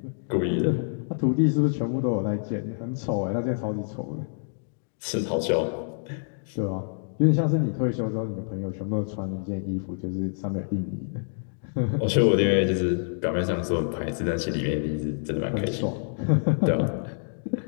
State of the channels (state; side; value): silent; right; digital silence